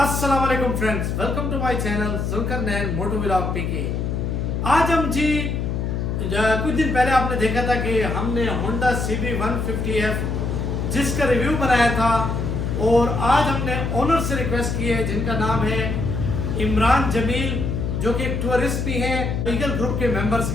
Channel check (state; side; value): noise; left; hum, 1 dB below the sound